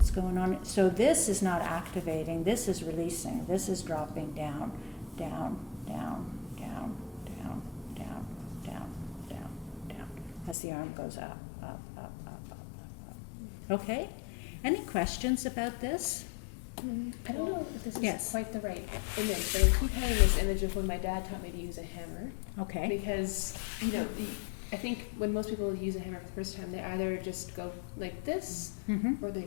going on? So this is not activating, this is releasing, this is dropping down, down, down, down, down, down, down, down, down, as the arm goes up, up, up, up, up, up, up. Okay? Any questions about this? I don't know if this is Yes. quite the right image, but I keep having this image of when my dad taught me to use a hammer. Okay. Because, I think when most people use a hammer for the first time, they either just go like this, Mm-hmm. or they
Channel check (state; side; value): drops out; right; at 10.6 s